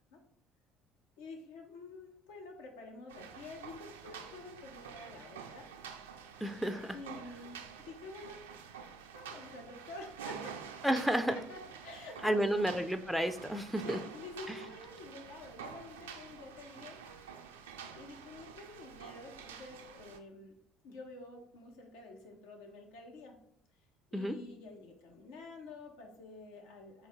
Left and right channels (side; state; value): both; normal; correlation 0.77